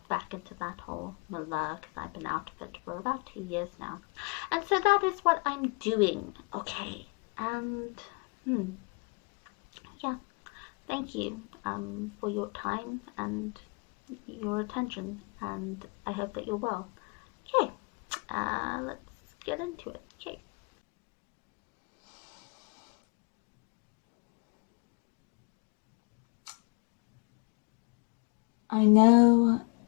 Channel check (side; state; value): right; quieter; 33.1 dB